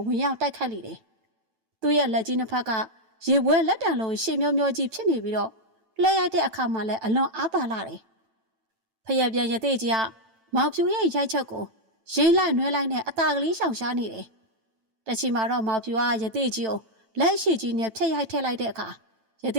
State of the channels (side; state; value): left; late; 9.0 ms